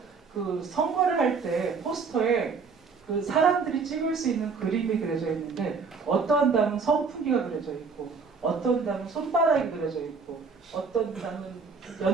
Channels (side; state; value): left; quieter; 5.0 dB